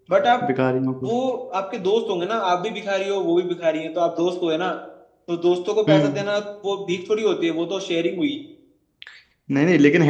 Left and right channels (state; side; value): identical; both; correlation 1.00